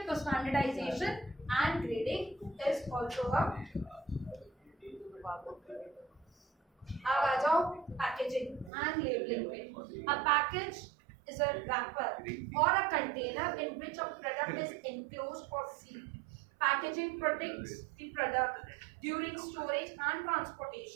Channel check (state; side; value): drops out; left; at 8.7 s